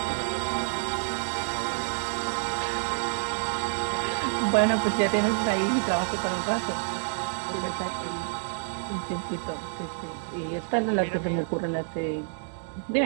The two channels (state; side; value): silent; left; digital silence